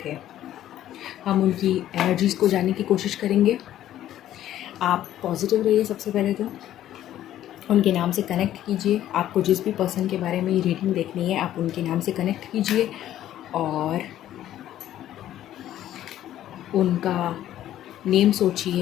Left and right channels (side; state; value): right; quieter; 12.4 dB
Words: थे। हम उनकी एनर्जीज़ को जानने की कोशिश करेंगे। आप पॉजिटिव रहिए। सबसे पहले तो उनके नाम से कनेक्ट कीजिए। आपको जिस भी पर्सन के बारे में ये रीडिंग देखनी है आप उनके नाम से कनेक्ट कीजिए और उनका नेम